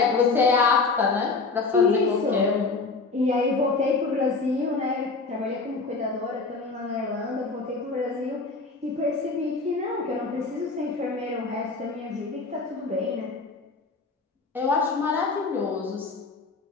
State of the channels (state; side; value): quieter; right; 4.0 dB